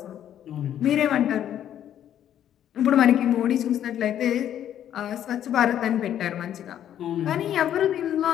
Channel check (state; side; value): quieter; right; 10.6 dB